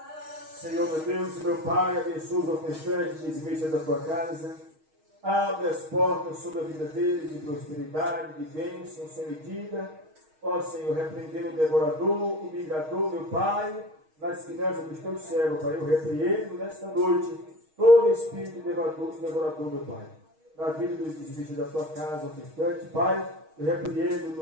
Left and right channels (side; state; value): left; late; 6.4 ms